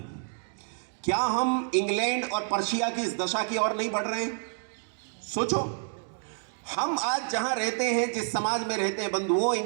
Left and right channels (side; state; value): left; silent; digital silence